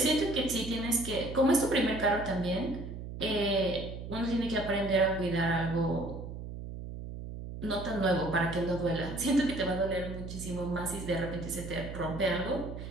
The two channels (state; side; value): noise; right; hum, 9 dB below the sound